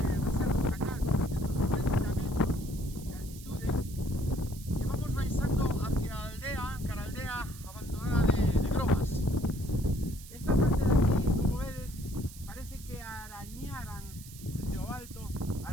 Serra do Candán, 190 metros de altitude, e vamos baixando hacia a aldea, cara a aldea abandonada de Grobas. Esta parte de aquí, como vedes, parece que arañaran desde o alto,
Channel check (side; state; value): right; noise; hiss, 17 dB below the sound